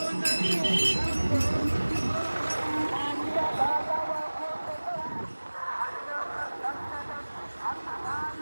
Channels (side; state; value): both; inverted; correlation -1.00